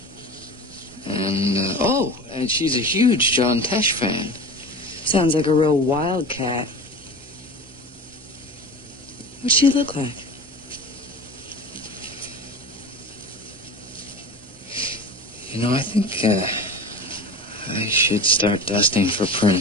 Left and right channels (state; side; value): normal; both; correlation 0.32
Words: And, and she's a huge John Tesh fan. Sounds like a real wildcat. What's she look like? You know, I think, I should start dusting for